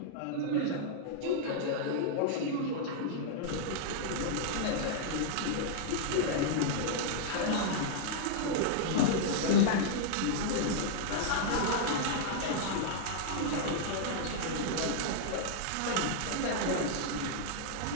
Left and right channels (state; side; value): different; both; correlation -0.01